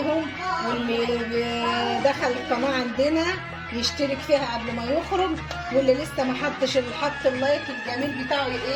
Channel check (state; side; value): identical; both; correlation 1.00